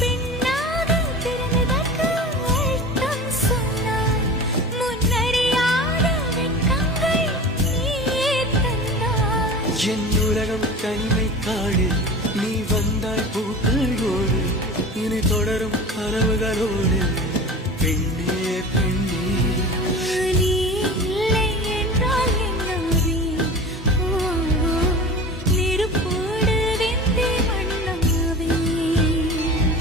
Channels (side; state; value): both; normal; correlation 0.35